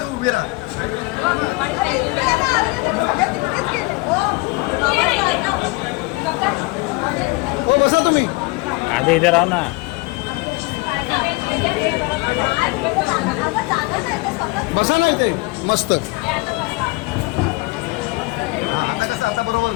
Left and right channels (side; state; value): right; quieter; 25.2 dB